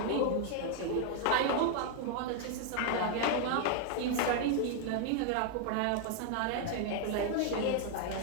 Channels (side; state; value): both; different; correlation 0.00